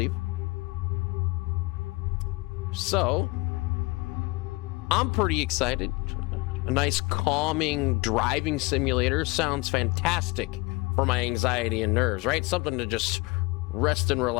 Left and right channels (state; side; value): quieter; right; 24.5 dB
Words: So, I'm pretty excited. A nice calming driving simulator sounds fantastic for my anxiety and nerves, right? Something to just rest and